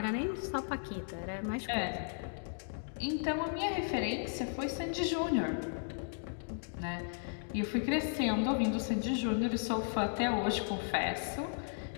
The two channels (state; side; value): silent; right; digital silence